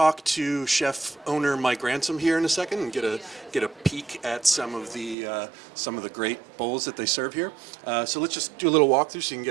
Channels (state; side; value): drops out; left; at 5.2 s